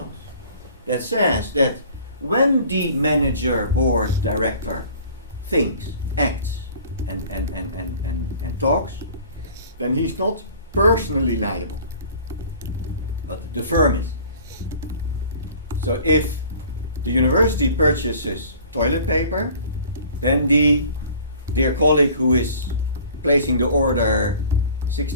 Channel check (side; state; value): both; inverted; correlation -0.48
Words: that says that when the manager, board, director thinks, acts, and talks, then he's not personally liable, but the firm is. So if the university purchases toilet paper, then the dear colleague who is placing the order